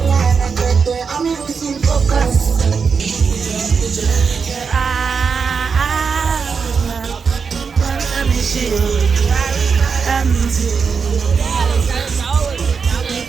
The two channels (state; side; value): quieter; left; 5.7 dB